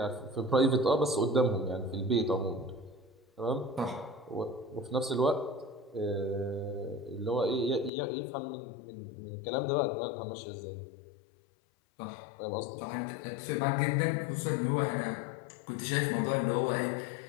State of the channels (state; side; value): drops out; right; at 7.9 s